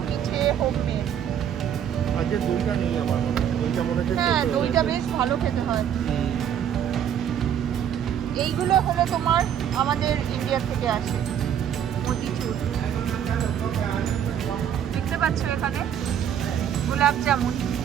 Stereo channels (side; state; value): left; quieter; 9.3 dB